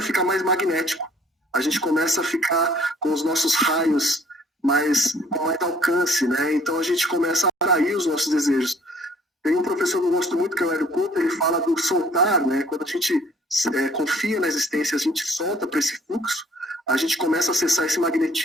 ficar mais magnético, a gente começa a ficar com os nossos raios com mais alcance, né? Então a gente começa a atrair os nossos desejos. Tem um professor que eu gosto muito, que é o Hélio Couto, ele fala do soltar, né? Quando a gente confia na existência, a gente solta para esse fluxo, a gente começa a acessar esse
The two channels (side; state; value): both; normal; correlation 0.58